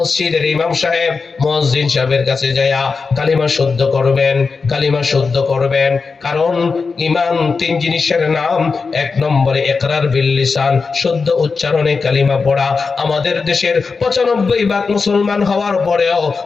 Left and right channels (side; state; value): right; quieter; 4.7 dB